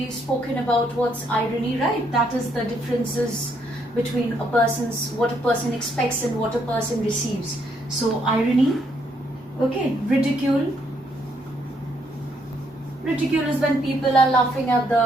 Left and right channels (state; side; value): normal; both; correlation 0.72